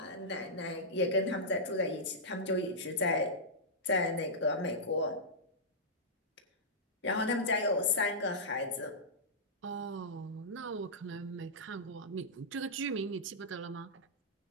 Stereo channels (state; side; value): normal; both; correlation -0.13